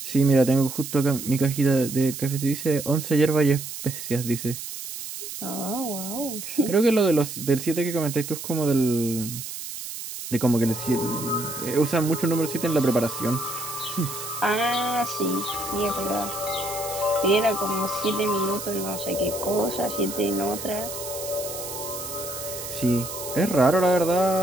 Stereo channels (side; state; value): right; noise; hiss, 9 dB below the sound